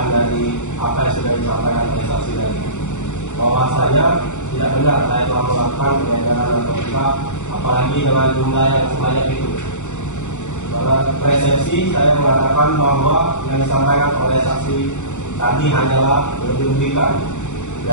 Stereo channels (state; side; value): late; right; 0.84 ms